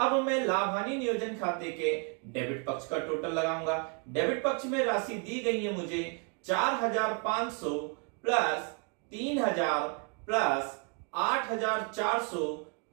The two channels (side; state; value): left; quieter; 36.6 dB